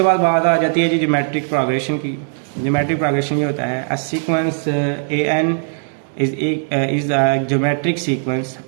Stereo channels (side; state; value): left; silent; digital silence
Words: बाद बात आ जाती है जी ज्योमेट्रिक प्रोग्रेशन की। ज्योमेट्रिक प्रोग्रेशन ये होता है, a sequence an is a geometric sequence